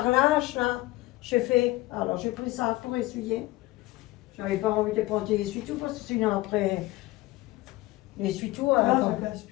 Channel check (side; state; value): right; quieter; 19.0 dB